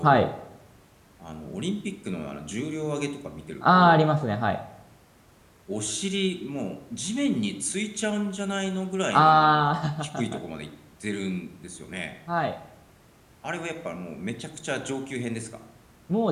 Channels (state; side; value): identical; both; correlation 1.00